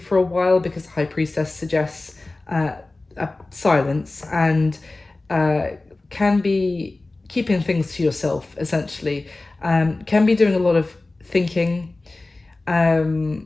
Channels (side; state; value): right; quieter; 3.1 dB